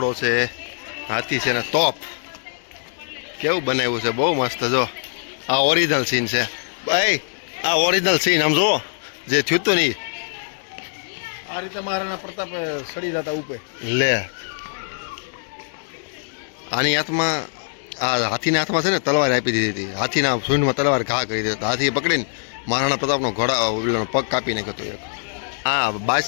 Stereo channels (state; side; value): silent; right; digital silence